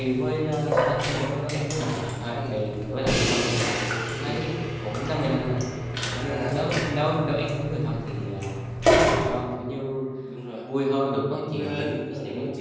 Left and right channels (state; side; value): identical; both; correlation 1.00